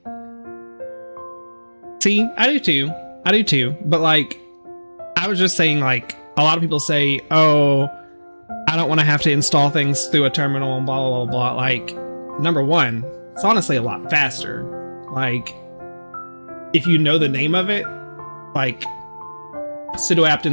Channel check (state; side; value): inverted; both; correlation -1.00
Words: See, I do too. I do too. But like, I was just saying, like, a lot of people say, oh, I don't want to have to install things through a terminal and blah, blah, blah, blah. Like, number one, it's honestly a lot faster. Like, if you know the name of it, like, sudo apt